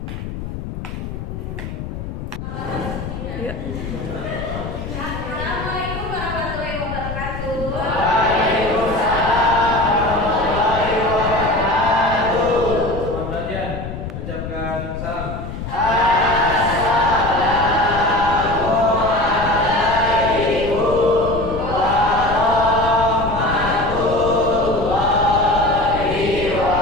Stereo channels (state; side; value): noise; left; rumble, 7 dB below the sound